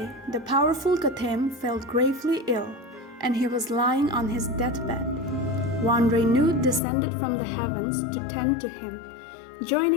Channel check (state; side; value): drops out; right; at 6.8 s